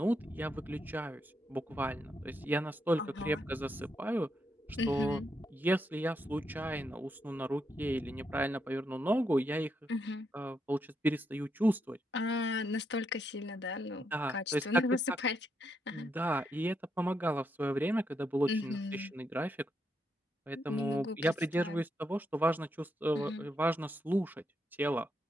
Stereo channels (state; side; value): normal; both; correlation 0.80